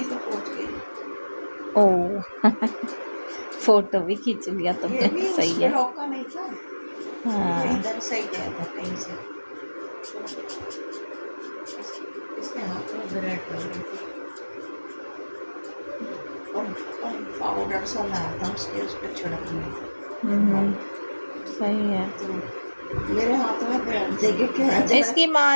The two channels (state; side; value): inverted; both; correlation -1.00